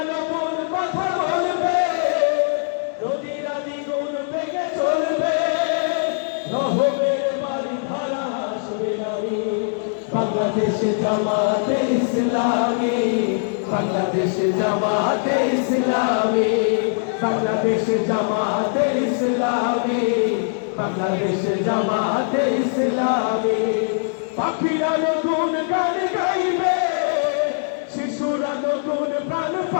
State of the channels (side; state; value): right; silent; digital silence